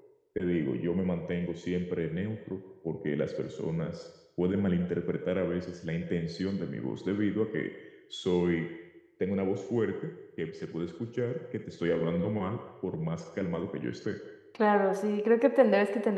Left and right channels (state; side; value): identical; both; correlation 1.00